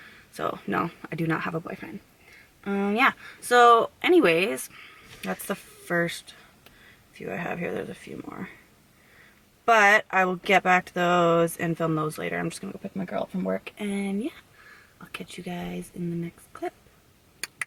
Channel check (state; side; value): identical; both; correlation 1.00